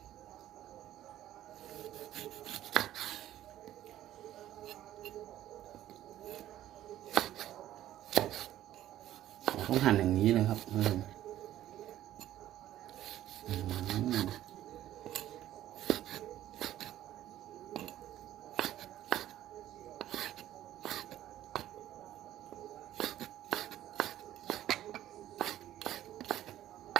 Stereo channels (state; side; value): quieter; left; 13.0 dB